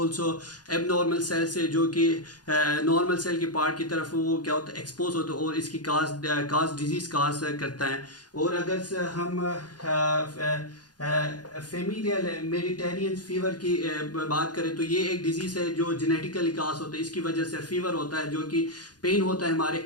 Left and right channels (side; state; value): right; late; 0.69 ms